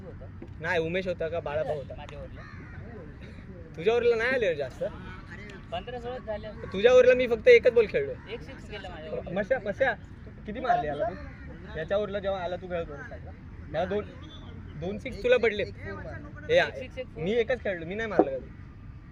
होता नाही उमेश होता का बाळाभाऊ होता माझ्या ओव्हरला तुझ्यावरला नाही आले रे जास्त 15-16 झाले तुझ्यावरला मी फक्त एकच बॉल खेळलो एक सिक्स गेला माझ्या मस्या मस्या किती मारले याला तू याच्यावरला जेव्हा आला तू खेळतो मला दोन सिक्स तुला पडले मी एकच खेळलो मी नाही मारलं कधी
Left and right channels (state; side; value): identical; both; correlation 1.00